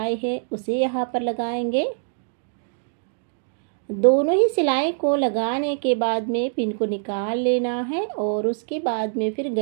है उसे यहाँ पर लगाएंगे। दोनों ही सिलाई को लगाने के बाद में पिन को निकाल लेना है और उसके बाद में फिर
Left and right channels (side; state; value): left; silent; digital silence